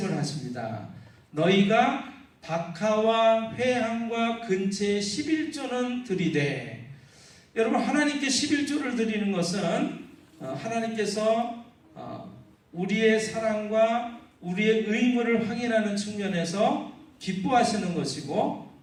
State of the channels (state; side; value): identical; both; correlation 1.00